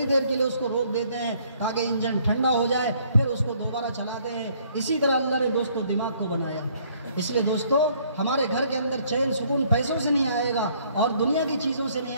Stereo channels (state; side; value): inverted; both; correlation -0.64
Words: دیر کے لیے اس کو روک دیتے ہیں تاکہ انجن ٹھنڈا ہو جائے، پھر اس کو دوبارہ چلاتے ہیں۔ اسی طرح اللہ نے دوستو دماغ کو بنایا۔ اس لیے دوستو ہمارے گھر کے اندر چین سکون پیسوں سے نہیں آئے گا اور دنیا کی چیزوں سے نہیں